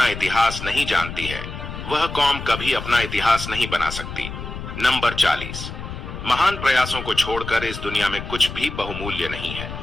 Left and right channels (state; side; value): noise; left; rumble, 9 dB below the sound